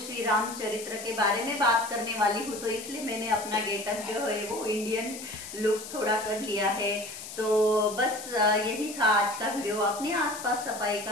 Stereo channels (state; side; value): noise; left; hiss, 11 dB below the sound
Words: रामचरित्र के बारे में बात करने वाली हूँ, तो इसलिए मैंने अपना गेटअप जो है वो इंडियन लुक थोड़ा कर लिया है। तो बस यही था आज का वीडियो। अपने आसपास सफाई